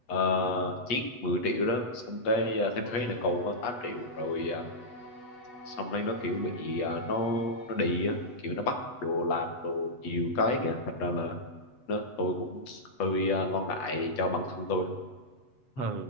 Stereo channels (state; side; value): late; right; 8.1 ms